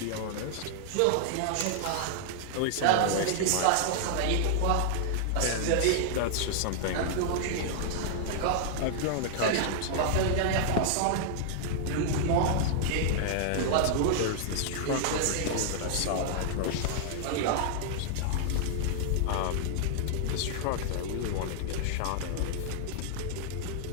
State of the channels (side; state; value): both; different; correlation -0.01